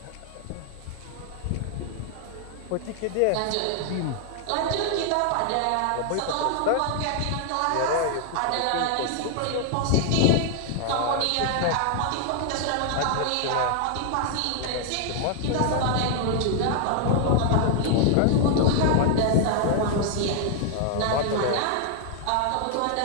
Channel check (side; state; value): both; different; correlation 0.00